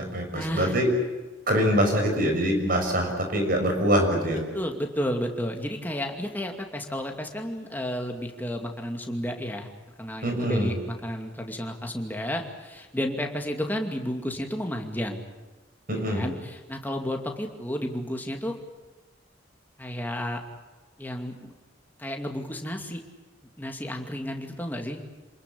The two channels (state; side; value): normal; both; correlation 0.53